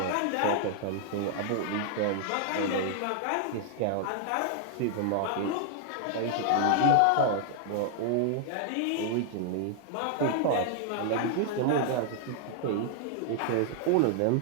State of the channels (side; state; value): both; different; correlation 0.00